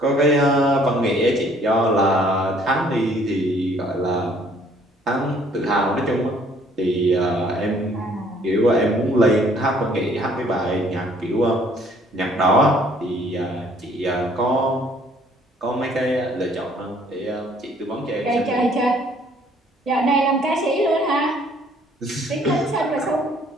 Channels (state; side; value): normal; both; correlation 0.60